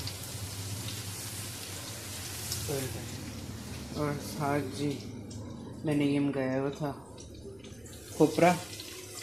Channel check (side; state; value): right; noise; rumble, 27 dB below the sound